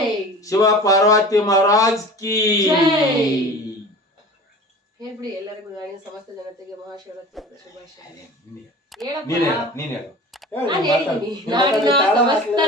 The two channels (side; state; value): both; normal; correlation 0.39